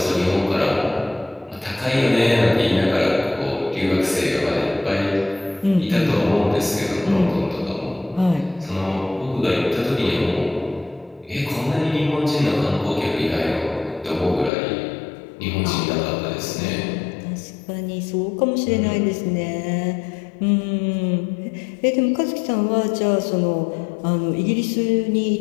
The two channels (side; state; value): right; drops out; at 14.5 s